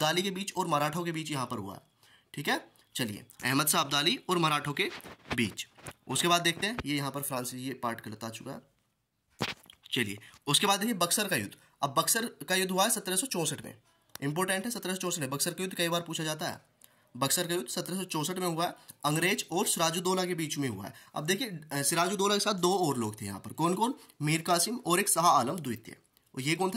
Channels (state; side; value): identical; both; correlation 1.00